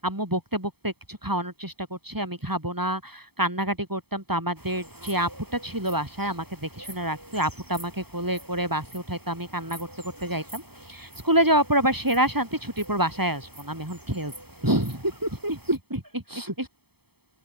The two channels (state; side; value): late; left; 0.97 ms